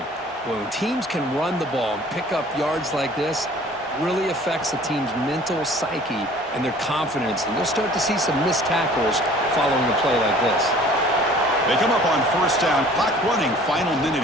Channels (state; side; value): normal; both; correlation 0.50